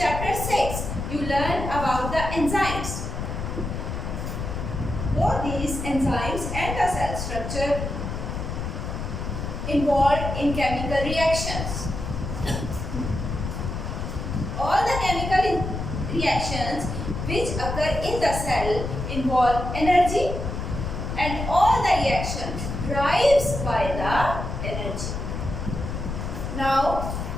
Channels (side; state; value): left; noise; rumble, 4 dB below the sound